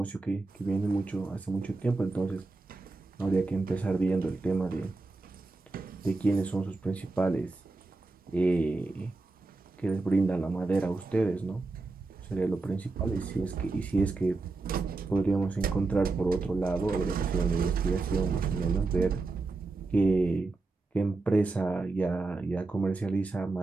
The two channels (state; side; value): quieter; left; 3.5 dB